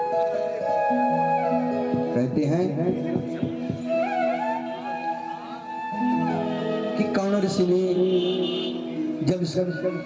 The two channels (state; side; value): identical; both; correlation 1.00